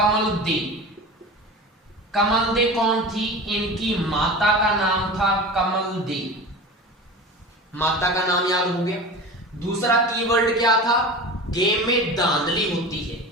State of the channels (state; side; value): normal; both; correlation 0.33